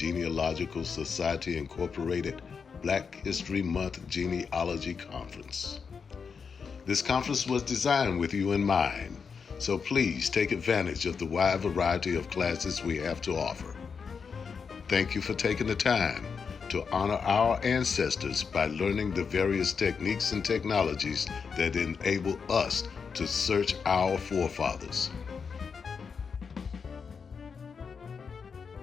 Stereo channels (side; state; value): right; quieter; 5.8 dB